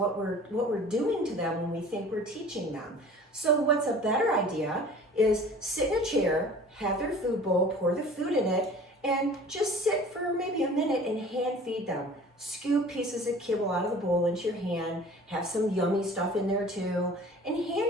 we're doing to them when we think we're teaching them. So what's a better idea is sit in a chair, have their food bowl, pour the food in it, and just sit for maybe a minute and hand feed them. Scoop pieces of kibble out of the bowl into your hand, have some yummy stuff in there too, and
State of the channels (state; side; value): normal; both; correlation 0.45